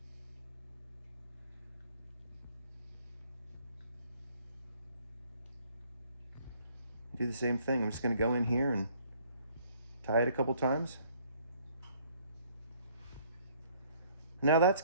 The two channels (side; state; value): both; inverted; correlation -0.61